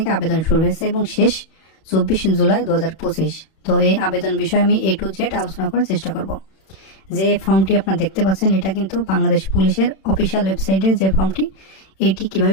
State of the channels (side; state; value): right; late; 31 ms